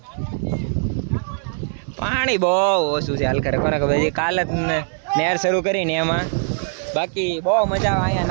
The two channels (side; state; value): left; silent; 65 dB below the other